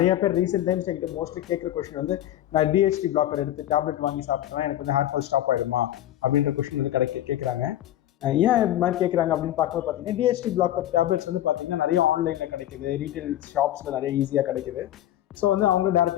பேர் ரீசெண்ட் டைம்ஸ் என்கிட்ட மோஸ்ட்லி கேட்குற கொஸ்டின் வந்து, நான் டிஹெச்டி பிளாக்கர் எடுத்து டேப்லெட் வாங்கி சாப்பிட்டேன், எனக்கு வந்து ஹேர் ஃபால் ஸ்டாப் ஆகிடுமா அப்படின்ற கொஸ்டின் வந்து கேட்குறாங்க. ஏன் இது மாதிரி கேட்குறாங்க அப்படின்னு பார்க்கும்போது பார்த்தீங்கன்னா, டிஹெச்டி பிளாக்கர் டேப்லெட்ஸ் வந்து பார்த்தீங்கன்னா நிறைய ஆன்லைனில் கிடைக்குது, ரீட்டைல் ஷாப்ஸில் நிறைய ஈஸியாக கிடைக்குது. ஸோ வந்து அவங்க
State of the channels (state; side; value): quieter; right; 12.9 dB